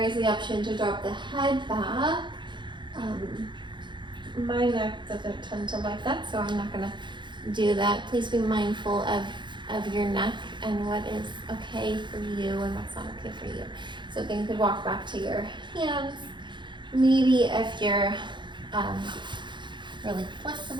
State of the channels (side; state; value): left; late; 0.23 ms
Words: is the option to drop the head back. My neck doesn't tend to like that, so I'm not gonna do that. Please be mindful of your neck and what is okay for you and what's not okay for you. So then you could walk back to your hands. Maybe if you're really